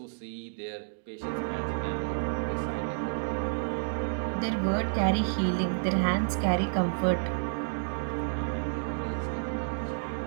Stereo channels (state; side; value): silent; left; digital silence